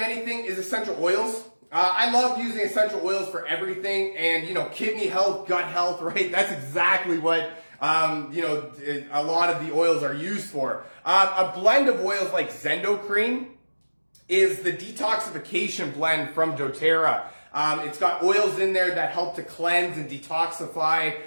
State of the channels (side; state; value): both; inverted; correlation -1.00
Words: anything is essential oils. I love using essential oils for everything, and kidney health, gut health, right? That's exactly what a lot of the oils are used for. A blend of oils like Zendocrine is the detoxification blend from doTERRA. It's got oils in there that help to cleanse and detoxify